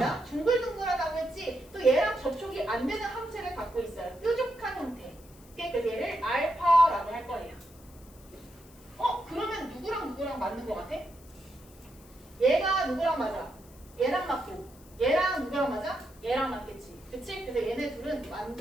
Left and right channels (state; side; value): noise; left; hiss, 24 dB below the sound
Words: 둥글둥글하다고 했지? 또 얘랑 접촉이 안 되는 항체를 갖고 있어요. 뾰족한 형태. 그래서 얘를 알파라고 할 거예요. 그러면 누구랑 맞는 것 같아? 얘가 누구랑 맞아? 얘랑 맞고 얘랑 누구랑 맞아? 얘랑 맞겠지. 그치? 그래서 얘네 둘은